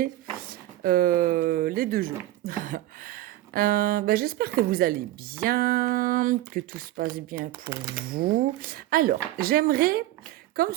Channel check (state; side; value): quieter; left; 15.2 dB